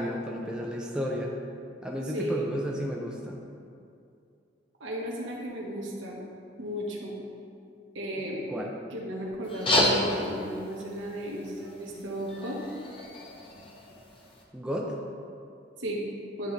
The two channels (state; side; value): normal; both; correlation 0.41